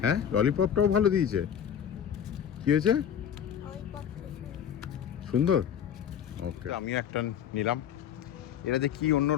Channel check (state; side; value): quieter; right; 9.0 dB